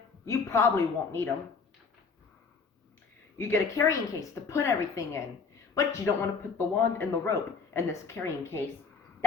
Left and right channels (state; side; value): quieter; right; 5.1 dB